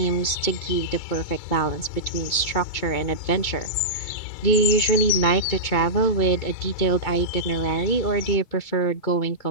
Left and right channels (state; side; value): late; right; 2.2 ms